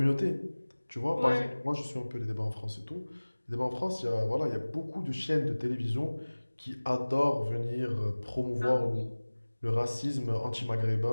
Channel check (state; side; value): inverted; both; correlation -1.00